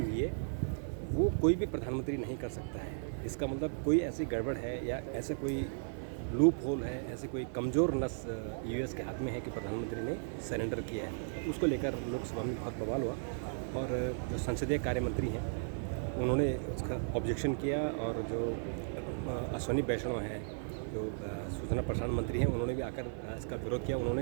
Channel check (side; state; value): left; silent; 54 dB below the other